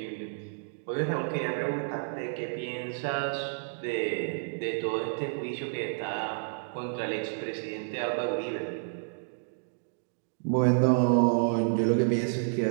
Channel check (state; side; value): silent; left; digital silence